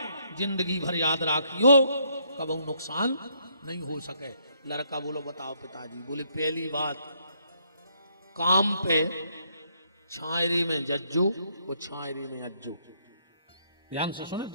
जिंदगी भर याद राखियो, कभी नुकसान नहीं हो सके। लड़का बोलो बताओ पिताजी। बोले पहली बात, काम पे छायरी में जज्जो और छायरी में अज्जो। ध्यान से सुने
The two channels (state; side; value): inverted; both; correlation -0.71